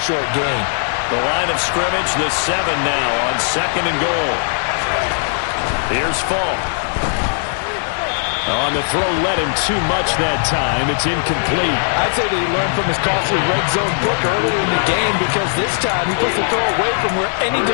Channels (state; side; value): silent; right; digital silence